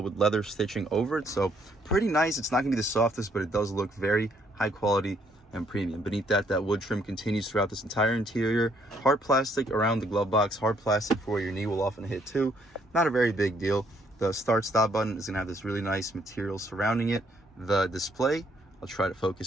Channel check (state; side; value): normal; both; correlation 0.68